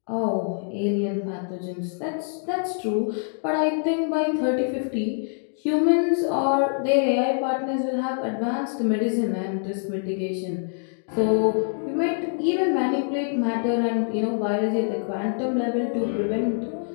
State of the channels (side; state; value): right; silent; digital silence